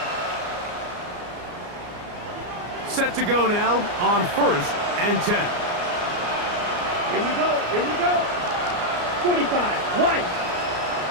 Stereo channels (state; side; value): late; left; 34 ms